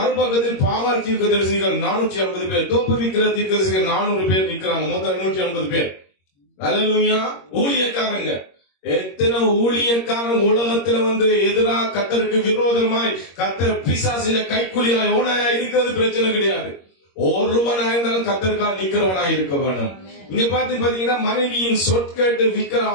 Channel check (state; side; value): late; right; 21 ms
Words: பாகால் தீர்க்கதரிசிகள் 450 பேர், தோப்புவிக்கிற தீர்க்கதரிசிகள் 400 பேர் நிற்கிறாங்க. மொத்தம் 150 பேர். அல்லேலூயா. ஊழியக்காரங்க, எத்தனை ஊழியக்காரன் உலகத்துல எதிராக கர்த்தருக்கு விரோதமாய் கர்த்தர் பிசாசில கைக்குலியாய் ஓனாயா இருக்கிறது பிரச்சனை கிடையாது. ஒருவனா இருந்தாலும் கர்த்தருக்காக நிக்கிறவனாய் இருக்க வேணும். இங்க பாத்தீங்கன்னா மனைவியின் சொற்கேட்டு விக்கிர